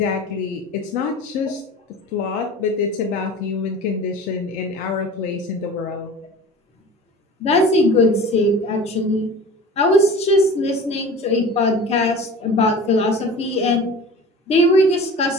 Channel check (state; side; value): normal; both; correlation 0.38